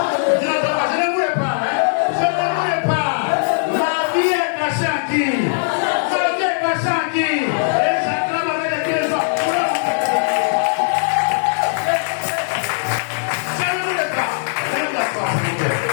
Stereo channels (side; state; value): right; silent; 66 dB below the other